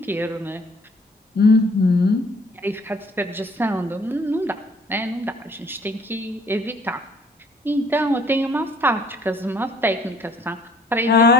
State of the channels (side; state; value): both; normal; correlation 0.58